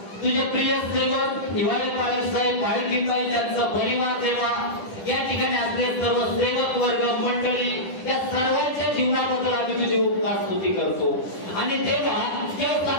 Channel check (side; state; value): right; late; 10 ms